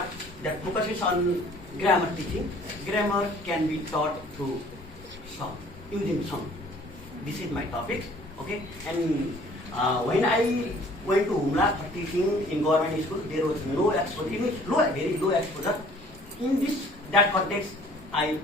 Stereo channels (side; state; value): both; normal; correlation 0.55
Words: that focuses on grammar teaching. Grammar can be taught through song, using song. This is my topic, okay? And when I went to Humla for teaching in government school, there was no exposure, it means very low exposure. In that context, I